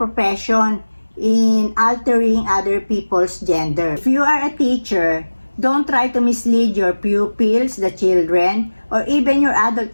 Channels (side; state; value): both; inverted; correlation -1.00